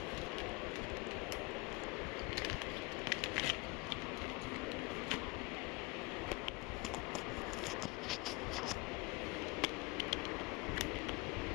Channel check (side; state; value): right; quieter; 25.6 dB